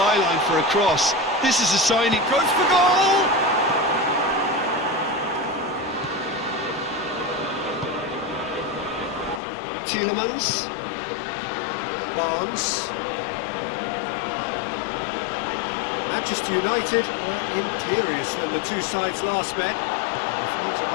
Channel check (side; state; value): right; drops out; at 9.4 s